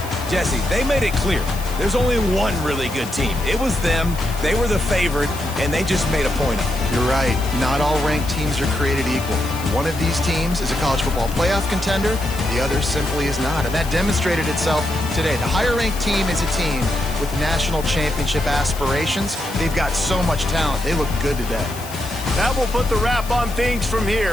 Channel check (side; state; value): left; noise; hiss, 14 dB below the sound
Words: Jesse, they made it clear. There's only one really good team. It was them. They were the favorite, and they just made a point of it. You're right. Not all ranked teams are created equal. One of these teams is a college football playoff contender. The other simply is not, and that demonstrated itself today. The higher-ranked team is a team with national championship aspirations. They've got so much talent. They look good today. That will put the wrap on things from